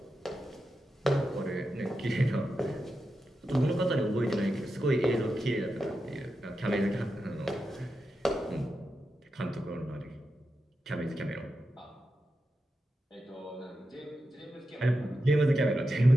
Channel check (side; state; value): both; normal; correlation 0.89